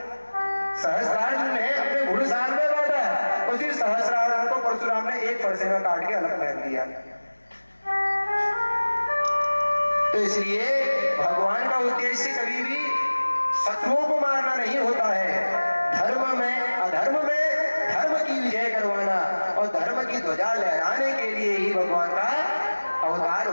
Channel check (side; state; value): both; inverted; correlation -1.00